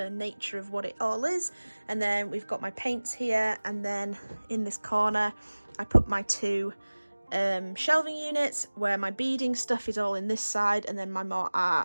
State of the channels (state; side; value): inverted; both; correlation -1.00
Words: nature of what it all is. And then we've got my paints here, and then in this corner I put my two shelving units where my beading stuff is all in this side, and then my more